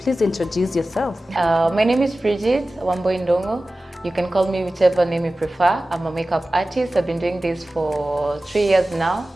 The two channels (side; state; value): both; normal; correlation 0.96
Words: please introduce yourself. My name is Bridget Wambui. You can call me whichever name you prefer. I'm a makeup artist. I've been doing this for 3 years now.